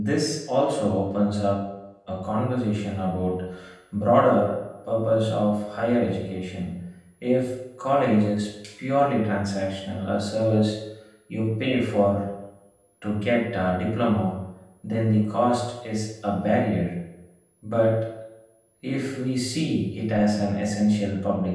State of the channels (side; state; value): both; identical; correlation 1.00